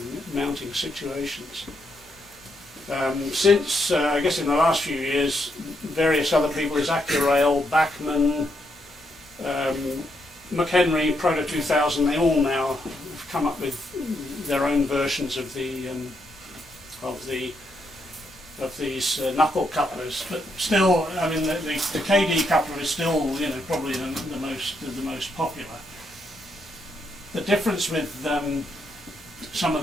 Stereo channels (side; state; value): both; normal; correlation 0.78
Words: situations. Since I guess in the last few years, various other people, as Accurail, Bachmann, McHenry, Proto 2000, they all now have come up with their own versions of these knuckle couplers. But still, I mean, the KD coupler is still probably the most popular. The difference with some of